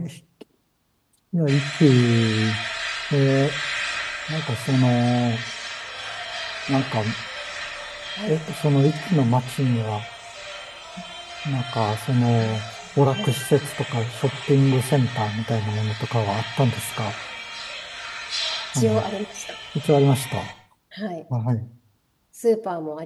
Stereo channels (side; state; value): both; identical; correlation 1.00